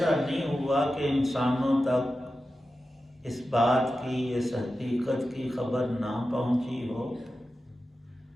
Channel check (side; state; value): both; normal; correlation 0.92